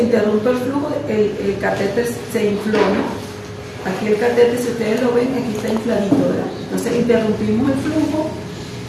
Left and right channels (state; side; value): identical; both; correlation 1.00